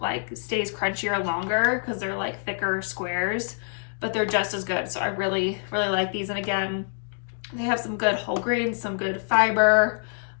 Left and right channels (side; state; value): right; silent; 61 dB below the other